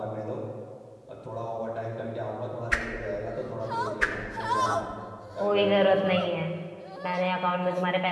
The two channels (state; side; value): identical; both; correlation 1.00